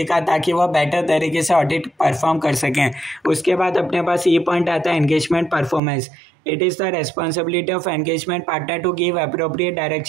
का, ताकि वो बेटर तरीके से ऑडिट परफॉर्म कर सकें। उसके बाद अपने पास ये पॉइंट आता है engagement performance. It is the responsibility of engagement partner to give appropriate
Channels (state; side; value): drops out; left; at 5.8 s